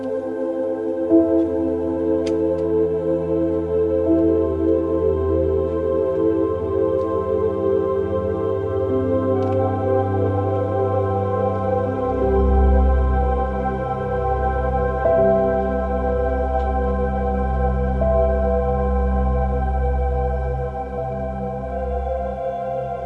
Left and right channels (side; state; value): both; identical; correlation 1.00